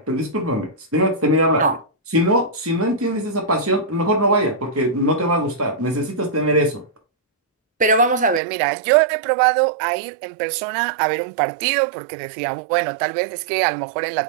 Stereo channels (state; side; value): drops out; left; at 8.4 s